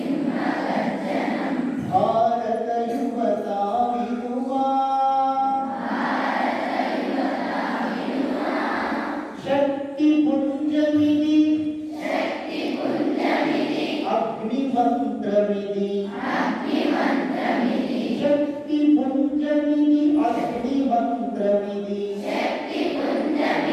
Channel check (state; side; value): identical; both; correlation 1.00